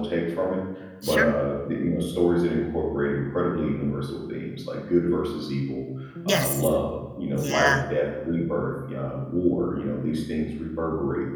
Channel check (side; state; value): both; identical; correlation 1.00